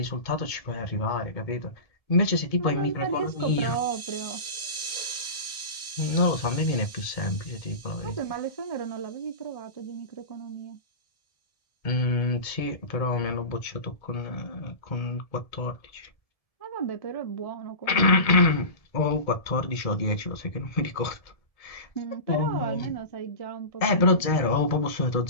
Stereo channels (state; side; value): late; right; 1.7 ms